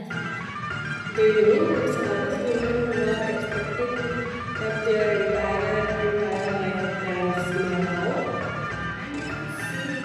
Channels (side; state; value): both; identical; correlation 1.00